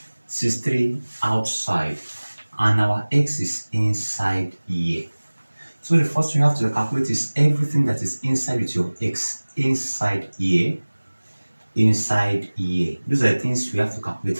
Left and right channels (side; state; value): both; inverted; correlation -1.00